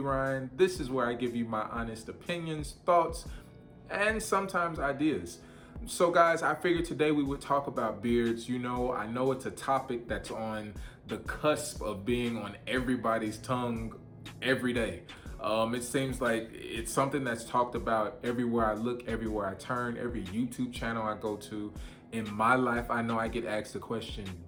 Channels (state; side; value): identical; both; correlation 1.00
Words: This is where I give you my honest opinions, thoughts, and sometimes ideas. So, guys, I figured today we would talk about beards. You know, I know it's a topic that's on the cusp of being on everybody's tongue every day. It seems like it's something that's talked about everywhere I look, everywhere I turn, every YouTube channel I go to. In my life, I know I get asked the question